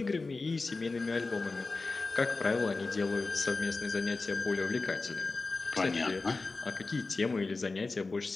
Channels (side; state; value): right; quieter; 3.7 dB